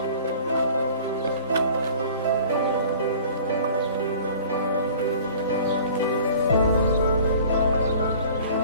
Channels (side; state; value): both; inverted; correlation -0.47